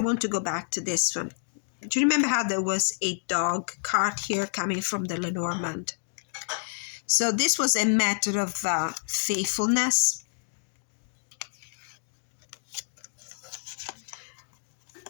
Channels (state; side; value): silent; right; digital silence